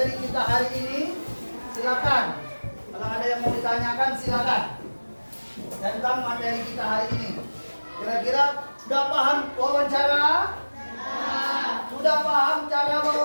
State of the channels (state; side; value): inverted; both; correlation -1.00